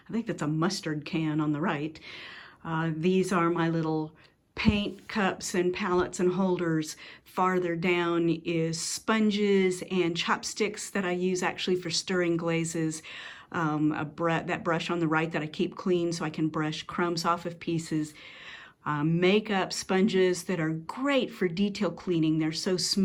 I think that's a mustard can on the right. These are my little paint cups and palettes and holders. Farther down is sponges and chopsticks that I use actually for stirring glazes. That brush on the right that I keep clean so I can brush crumbs off of pieces. Makeup sponges that are great for detail cleaning. They're so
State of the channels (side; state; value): both; identical; correlation 1.00